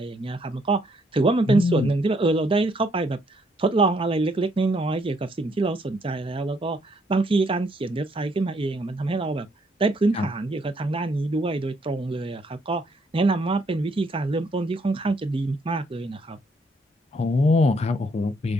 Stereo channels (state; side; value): normal; both; correlation 0.70